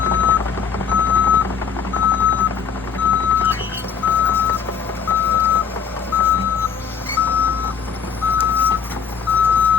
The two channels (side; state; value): right; quieter; 7.1 dB